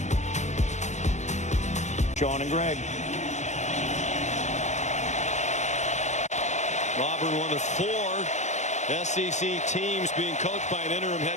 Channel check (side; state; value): right; late; 0.34 ms